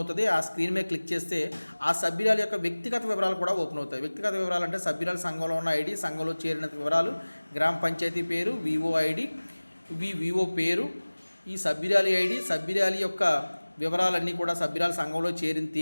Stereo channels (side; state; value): both; inverted; correlation -1.00